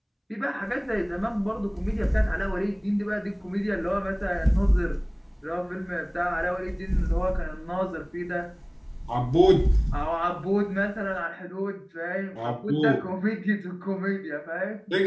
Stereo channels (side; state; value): both; identical; correlation 1.00